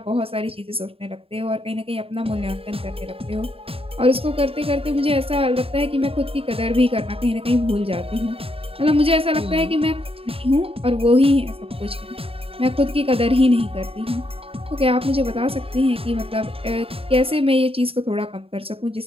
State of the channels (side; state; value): left; late; 0.27 ms